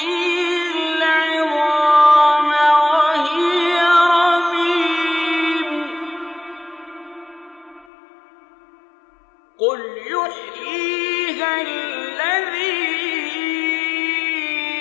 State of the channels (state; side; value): drops out; right; at 7.9 s